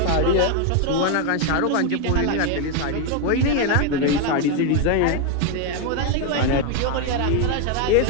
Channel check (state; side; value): different; both; correlation 0.01